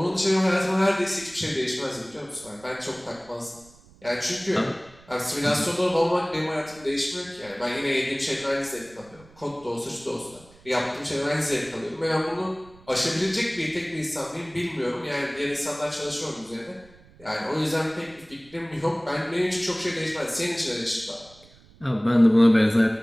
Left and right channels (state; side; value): noise; right; rumble, 25 dB below the sound